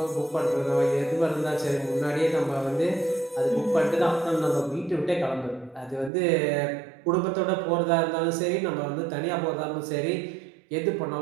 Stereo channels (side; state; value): left; drops out; at 6.1 s